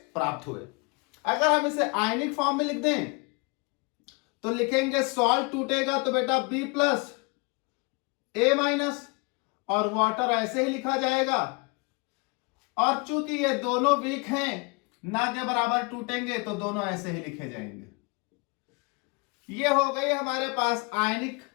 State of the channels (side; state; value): right; quieter; 30.3 dB